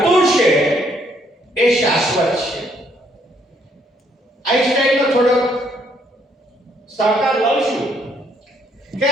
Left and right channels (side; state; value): both; normal; correlation 0.69